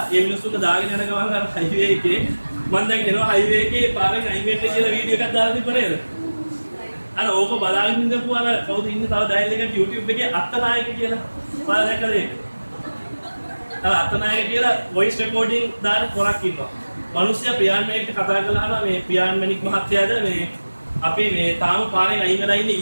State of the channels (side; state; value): both; inverted; correlation -1.00